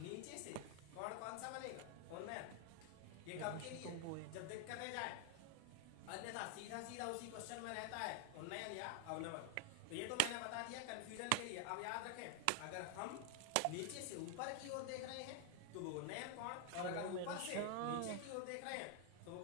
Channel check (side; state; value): both; different; correlation 0.00